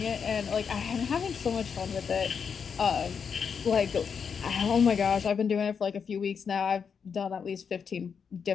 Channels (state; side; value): quieter; right; 6.5 dB